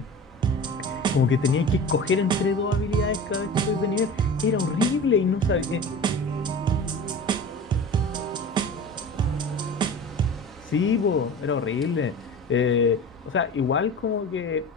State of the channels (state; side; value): normal; both; correlation 0.35